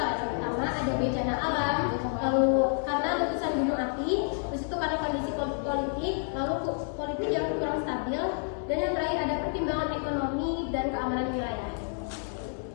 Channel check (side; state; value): right; silent; 58 dB below the other